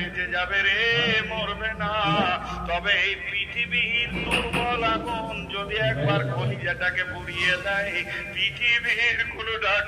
যাবে রে, মরবে না। তবে এই পৃথিবীর দুর্বল আগুন যদি একবার কলিজাটাকে পুড়িয়ে দেয়, পৃথিবীর কোন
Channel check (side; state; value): both; identical; correlation 1.00